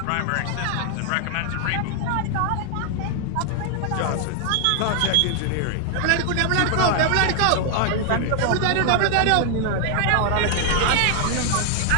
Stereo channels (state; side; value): different; both; correlation 0.00